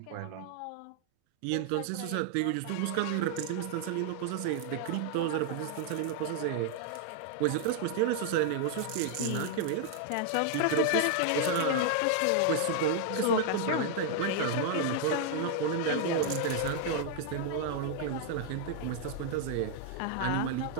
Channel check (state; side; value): different; both; correlation 0.00